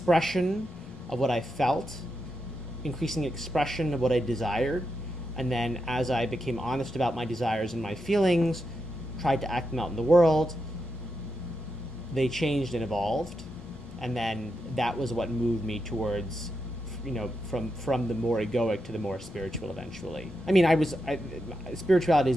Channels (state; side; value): normal; both; correlation 0.86